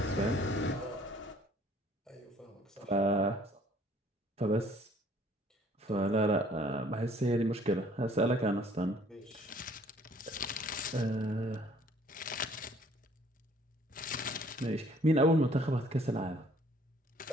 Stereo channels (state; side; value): normal; both; correlation 0.58